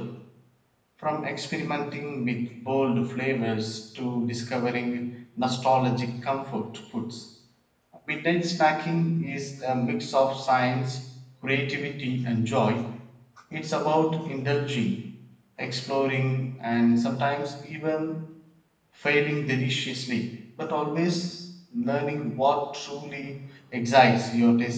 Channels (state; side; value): identical; both; correlation 1.00